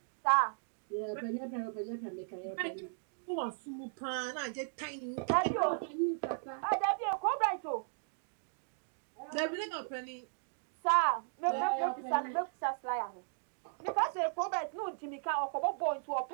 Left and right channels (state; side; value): silent; left; digital silence